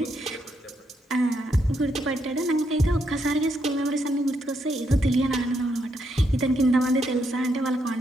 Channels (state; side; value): normal; both; correlation 0.78